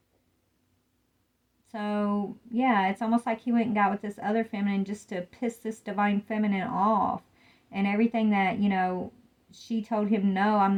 So, yeah, it's almost like he went and got with this other feminine just to piss this divine feminine off. And everything that, she told him, no, I'm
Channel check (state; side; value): identical; both; correlation 1.00